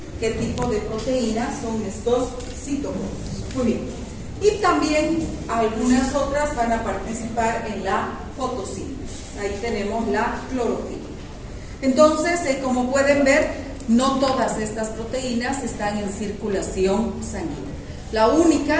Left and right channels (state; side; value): identical; both; correlation 1.00